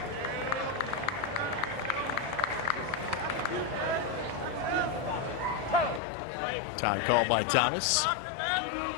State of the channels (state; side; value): drops out; right; at 6.0 s